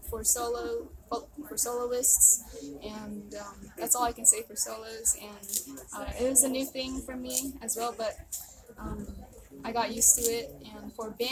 for soloists, and that's all I can say for solos. And it was a new thing for me as well, but I got used to it. And for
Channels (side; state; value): both; identical; correlation 1.00